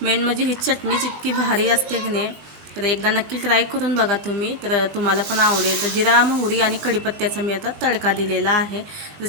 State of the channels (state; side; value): late; left; 19 ms